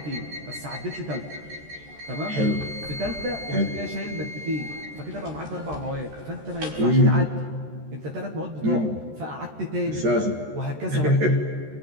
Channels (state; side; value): late; left; 13 ms